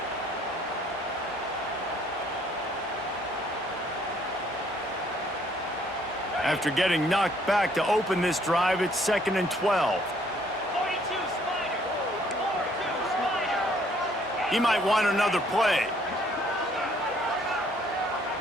After getting knocked back to open this drive, it's 2nd and 12. 42 Spider. 42 Spider. He might want another play.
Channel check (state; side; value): normal; both; correlation 0.63